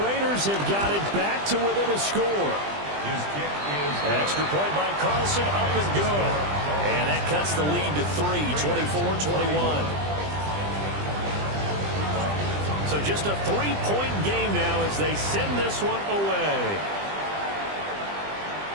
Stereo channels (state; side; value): late; left; 20 ms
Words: Raiders have got it back to within a score. Extra point by Carlson, up and good. And that cuts the lead to 3, 24-21. So just a 3-point game now as they send this one away.